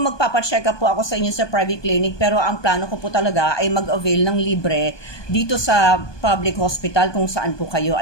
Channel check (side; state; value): right; late; 1.2 ms